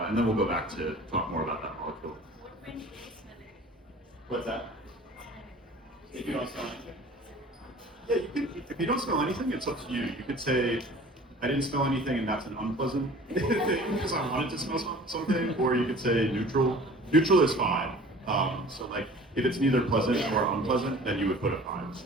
then we'll go back to talk more about that molecule. What's that? If you don't smell anything? Yeah, you could, if you don't smell anything, it's up to you. You could say, I didn't smell anything and that's an unpleasant thing because I wanted to smell something, or you could say neutral. Neutral is 5. So like, if it's neither pleasant or unpleasant, then you would put a 5.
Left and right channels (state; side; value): normal; both; correlation 0.45